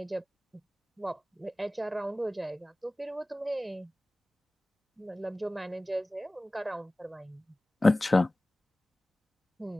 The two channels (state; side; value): normal; both; correlation 0.98